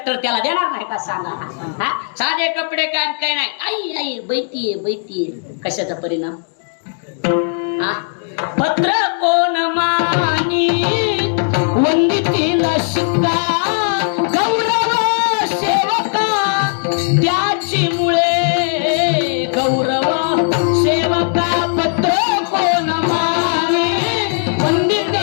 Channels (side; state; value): right; silent; 68 dB below the other